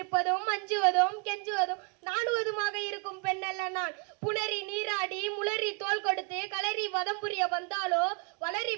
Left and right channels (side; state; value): left; quieter; 35.7 dB